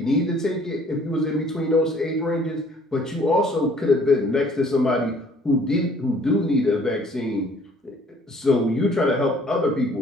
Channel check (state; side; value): normal; both; correlation 0.57